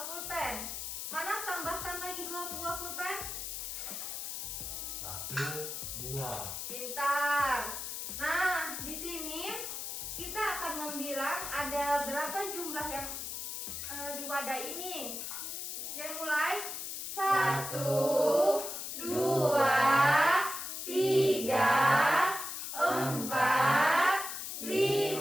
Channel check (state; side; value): noise; left; hiss, 5 dB below the sound